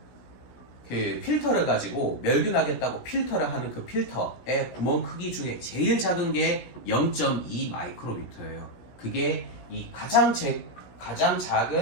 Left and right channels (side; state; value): right; late; 17 ms